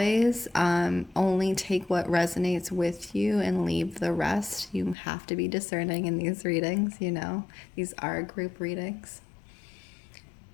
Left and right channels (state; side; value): drops out; right; at 5.0 s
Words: only take what resonates with you and leave the rest. You have to be discerning in these readings, you know. These are group readings.